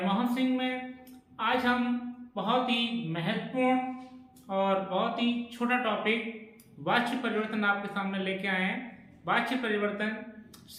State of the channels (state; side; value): identical; both; correlation 1.00